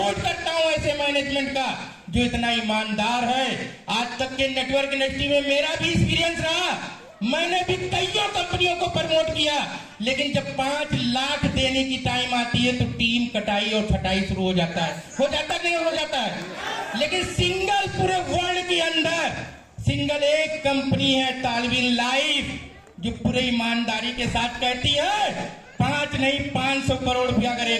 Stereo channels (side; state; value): both; identical; correlation 1.00